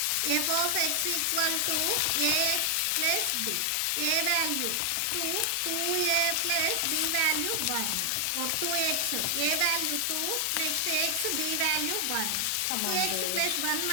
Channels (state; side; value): different; both; correlation 0.00